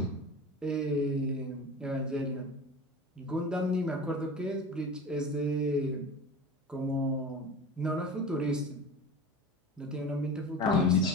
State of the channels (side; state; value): both; normal; correlation 0.33